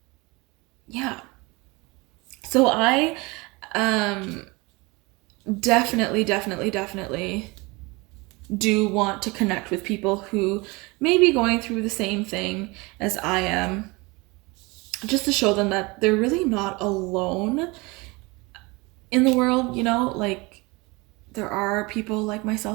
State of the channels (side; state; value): left; quieter; 25.2 dB